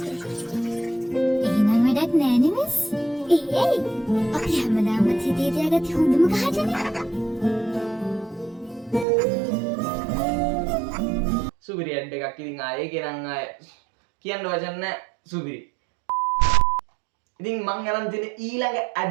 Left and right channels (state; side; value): drops out; left; at 9.1 s